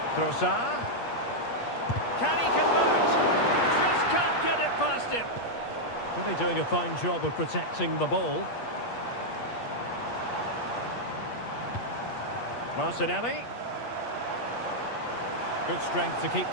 Trossard. Can he convert? Just can't get it past him. Really doing a fine job of protecting the ball. Martinelli. Good strength to keep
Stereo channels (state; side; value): late; right; 8.5 ms